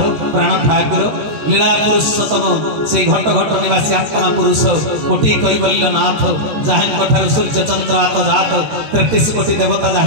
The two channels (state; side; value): late; left; 13 ms